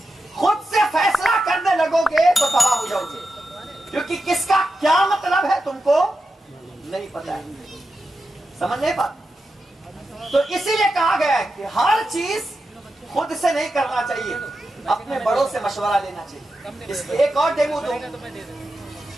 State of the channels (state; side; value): normal; both; correlation 0.89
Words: خود سے فیصلہ کرنے لگو گے تو تباہ ہو جاؤ گے، کیونکہ کس کا کیا مطلب ہے تم کو نہیں پتا ہے، سمجھ نہیں پاتے۔ تو اسی لیے کہا گیا ہے کہ ہر چیز خود سے نہیں کرنا چاہیے، اپنے بڑوں سے مشورہ لینا چاہیے۔ اس کے ایک اور ڈیمو دوں،